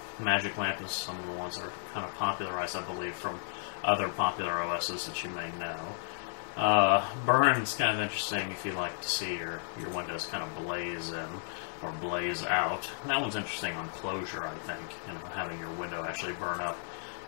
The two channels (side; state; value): right; silent; 56 dB below the other